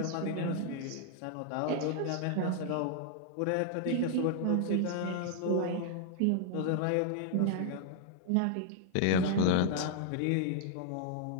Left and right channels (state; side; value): different; both; correlation 0.00